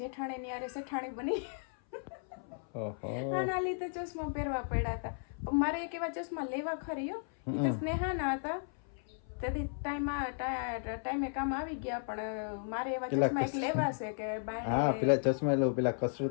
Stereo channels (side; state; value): right; silent; 55 dB below the other